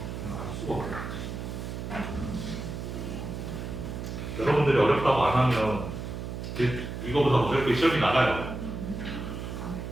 수고. 여러분들이 어렵다고 안 하면 이거보다 어렵게 시험이 나가요.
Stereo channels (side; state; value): right; noise; hum, 6 dB below the sound